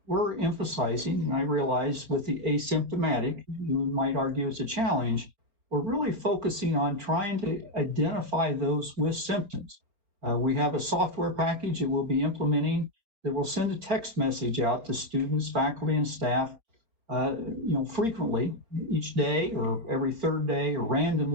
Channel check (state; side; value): late; left; 4.3 ms